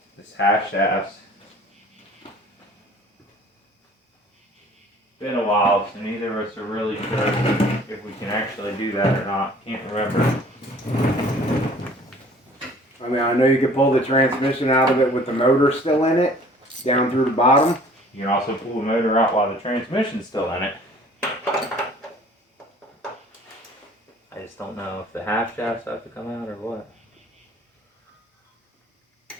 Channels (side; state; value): both; normal; correlation 0.51